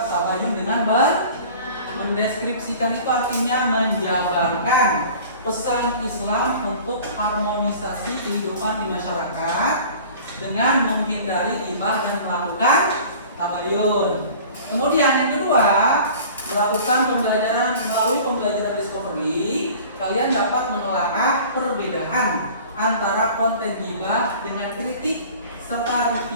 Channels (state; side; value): inverted; both; correlation -0.44